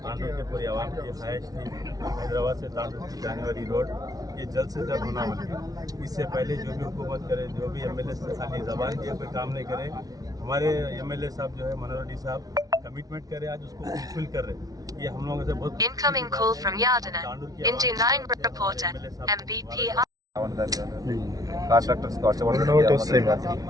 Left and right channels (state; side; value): late; left; 0.18 ms